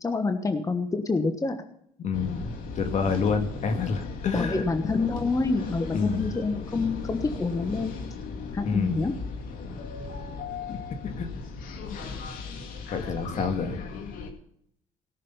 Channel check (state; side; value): quieter; right; 3.9 dB